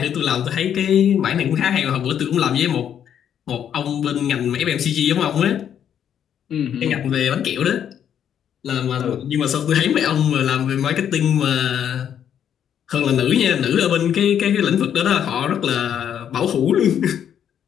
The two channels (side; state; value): right; quieter; 9.2 dB